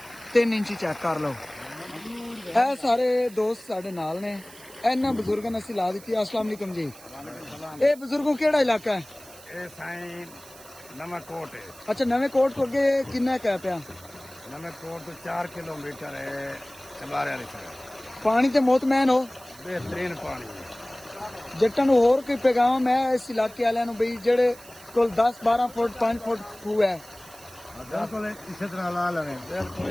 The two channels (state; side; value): noise; right; hiss, 20 dB below the sound